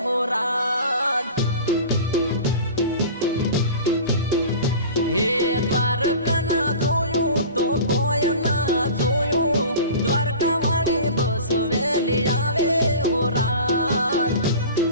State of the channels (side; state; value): both; inverted; correlation -0.38